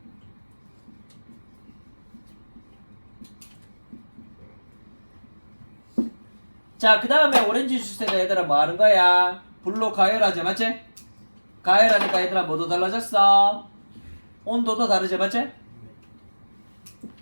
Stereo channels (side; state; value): both; inverted; correlation -1.00